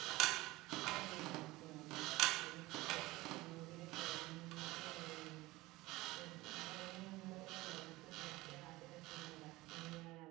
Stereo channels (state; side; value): quieter; left; 19.9 dB